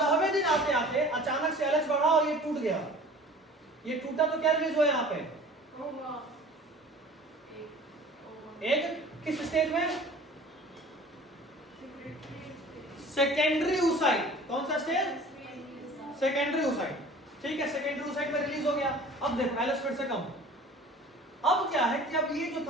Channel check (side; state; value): both; normal; correlation 0.45